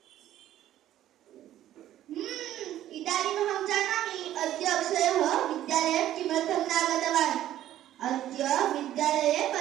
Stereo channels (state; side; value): quieter; left; 12.6 dB